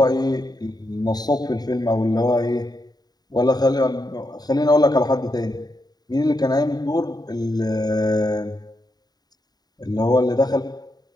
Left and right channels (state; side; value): late; right; 0.19 ms